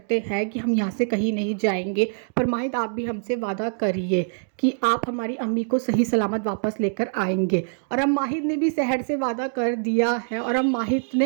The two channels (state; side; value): silent; left; digital silence